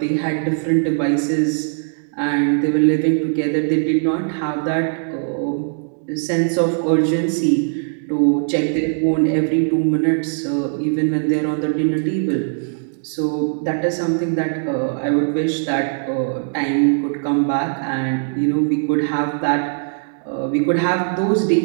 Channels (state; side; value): silent; left; digital silence